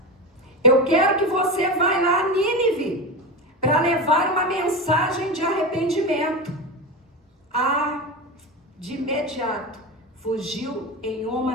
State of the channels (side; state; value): both; normal; correlation 0.21